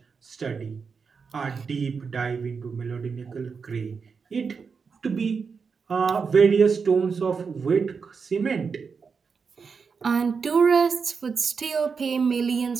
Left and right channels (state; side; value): quieter; left; 5.5 dB